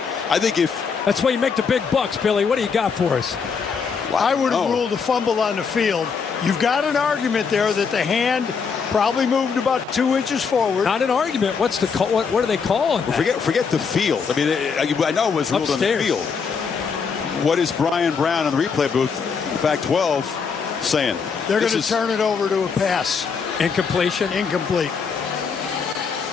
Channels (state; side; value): quieter; right; 5.8 dB